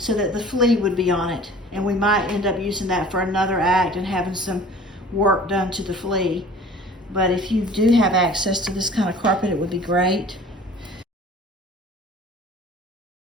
that the flea would be on it, and we might end up using that for another act and having some work done to the flea. But if you do have access to this kind of carpet, it would be great.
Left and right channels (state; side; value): normal; both; correlation 0.46